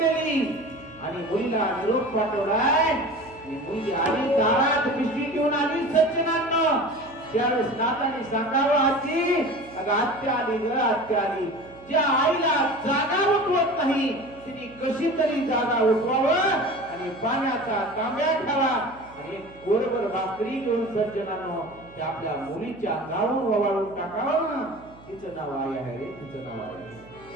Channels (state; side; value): noise; right; hum, 23 dB below the sound